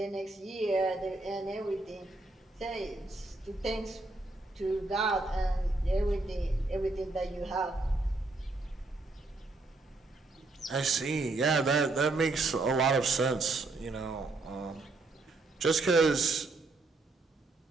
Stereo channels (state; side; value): quieter; left; 3.2 dB